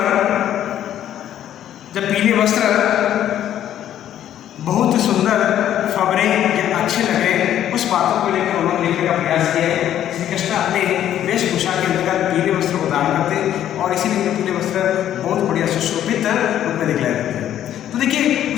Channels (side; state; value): right; quieter; 11.2 dB